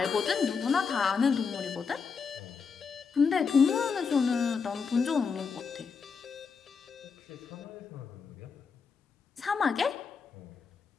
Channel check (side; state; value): right; quieter; 5.6 dB